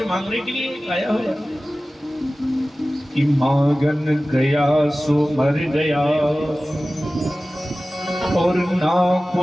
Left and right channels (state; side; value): normal; both; correlation 0.96